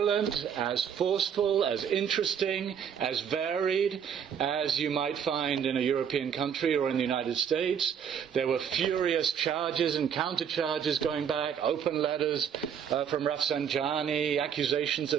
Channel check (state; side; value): quieter; left; 7.9 dB